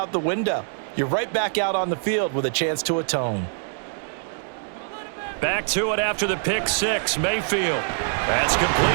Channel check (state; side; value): silent; left; 62 dB below the other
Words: the window. You're right back out on the field with a chance to atone. Back to it after the pick six. Mayfield. That's